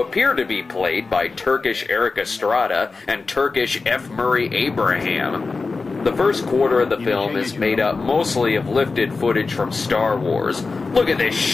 appear to be played by Turkish Eric Estrada and Turkish F. Murray Abraham. The first quarter of the film is made up mostly of lifted footage from Star Wars. Look at this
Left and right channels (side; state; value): right; quieter; 4.1 dB